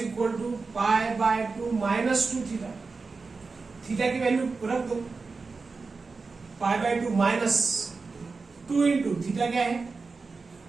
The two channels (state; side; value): quieter; left; 4.3 dB